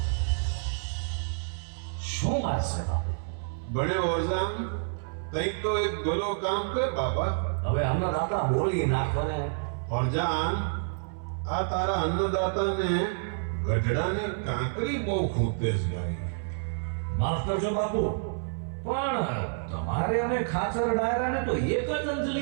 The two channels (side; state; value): left; silent; 59 dB below the other